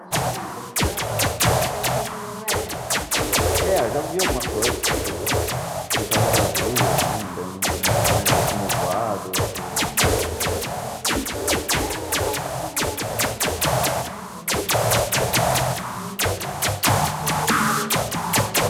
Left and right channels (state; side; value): identical; both; correlation 1.00